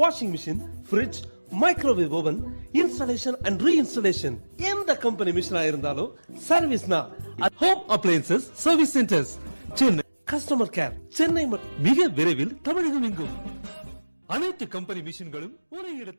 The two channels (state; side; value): inverted; both; correlation -1.00